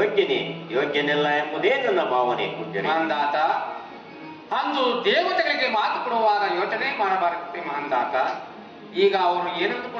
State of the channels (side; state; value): both; identical; correlation 1.00